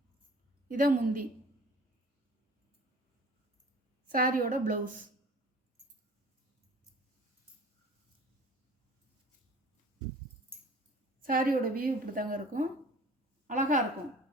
இதான் முந்தி. சாரியோட ப்ளவுஸ். சாரியோட வியூ இப்படி தாங்க இருக்கும். அழகாக இருக்கும்.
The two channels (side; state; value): both; normal; correlation 0.47